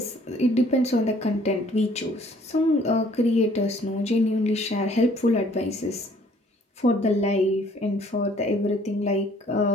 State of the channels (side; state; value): both; normal; correlation 0.59